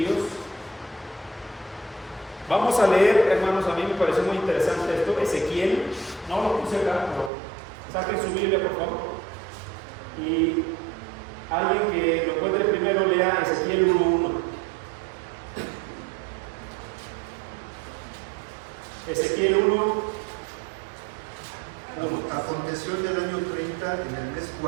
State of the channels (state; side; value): drops out; left; at 7.3 s